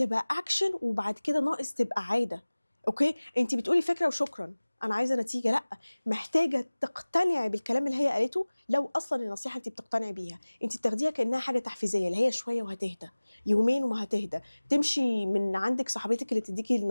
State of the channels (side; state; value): both; inverted; correlation -1.00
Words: اكشن، وبعد كده ناقص تبقى عادة، اوكي. انت بتقولي فكرة وشكرا انا عايزه نتيجه، لا، محتاجه تقتنعي بالكلام اللي هي قالته. لو اصلا النصيحه انت بتقتنعي بيها، انت بتاخديها كانها حاجه تحفيزيه، اللي هي شويه وهتهدى، يومين وما هتهدى. تمشي من عندك صاحبتك اللي تديكي